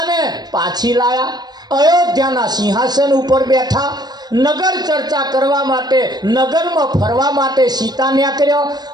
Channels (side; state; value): left; late; 0.20 ms